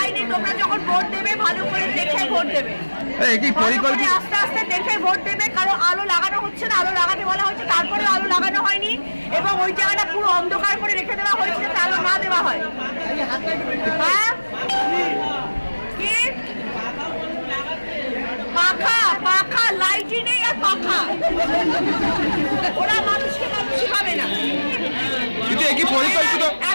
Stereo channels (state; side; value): inverted; both; correlation -1.00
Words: তোমরা যখন ভোট দেবে ভালো করে দেখে ভোট দেবে, আস্তে আস্তে দেখে ভোট দেবে, কারণ আলো লাগানো হচ্ছে না, আলো লাগাতে বলা হয়েছে, তারপরে আলো লাগানো হয়নি এবং ওই জায়গাটা পুরো অন্ধকার করে রেখে দেওয়া হয়েছে যাতে আলো না দেওয়া হয়। হ্যাঁ, কি পাখা পাখা লাইটই নেই আর পাখা, ওরা মানুষকে মানুষই পাবে না।